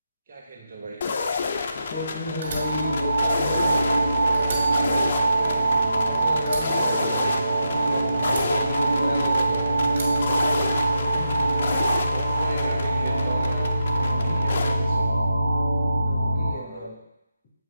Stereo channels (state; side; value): inverted; both; correlation -0.86